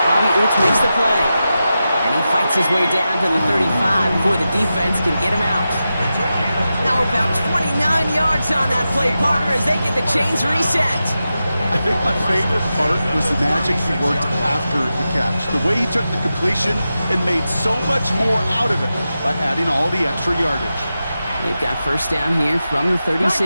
Bobby Oots makes the play. And he fights his way down to the 35 before the defense can get him out. Now about 29 yards on that play, partner, as they get the chains reset. I think my favorite part was the magic he worked after the catch. The way he took the completion and made so much more out of it by adding all the extra yardage. They've got 1st down here from the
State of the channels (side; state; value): both; inverted; correlation -0.91